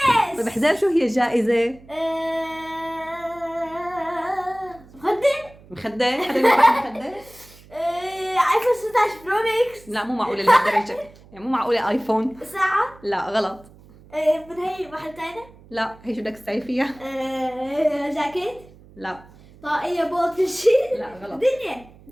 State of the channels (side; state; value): right; noise; hum, 24 dB below the sound